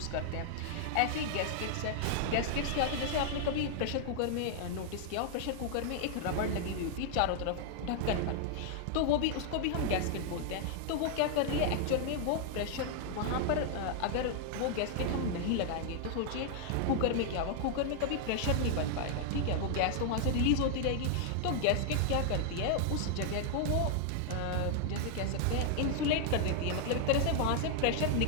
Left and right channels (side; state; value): both; different; correlation 0.00